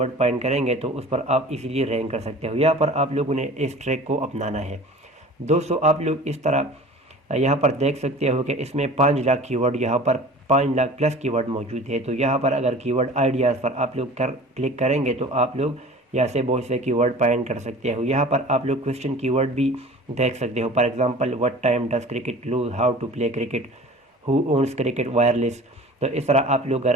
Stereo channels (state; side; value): normal; both; correlation 0.42